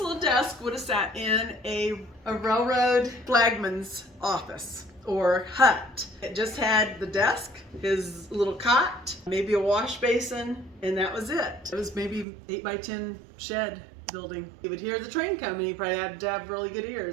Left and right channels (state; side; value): drops out; left; at 12.2 s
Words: desk would have sat in a railroad flagman's office or hut. It just had the desk, his little cot, maybe a wash basin, and that was it. It was maybe 8 by 10 shed building. He would hear the train coming. He probably had to have really good